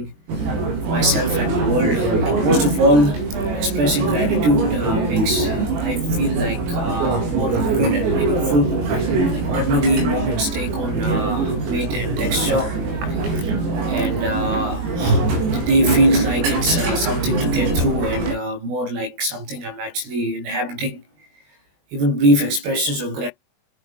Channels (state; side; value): late; left; 20 ms